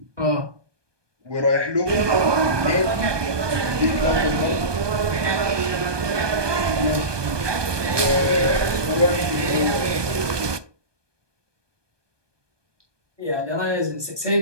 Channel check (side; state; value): left; late; 1.2 ms